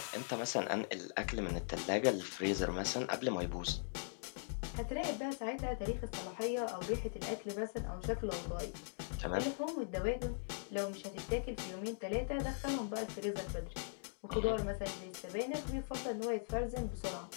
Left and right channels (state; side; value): silent; right; digital silence